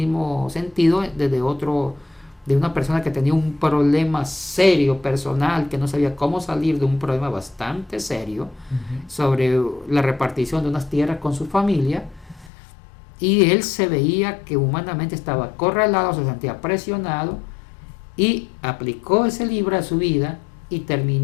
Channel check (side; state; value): right; drops out; at 12.5 s